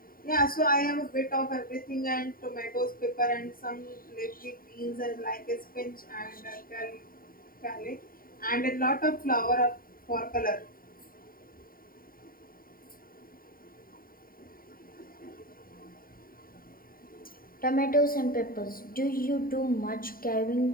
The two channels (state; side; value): late; right; 0.42 ms